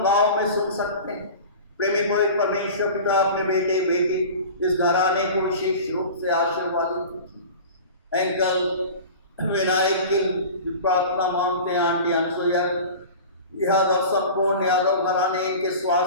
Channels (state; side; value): inverted; both; correlation -0.36